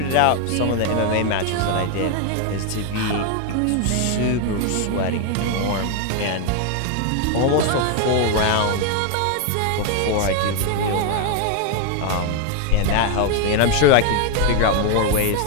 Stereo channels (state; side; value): different; both; correlation 0.01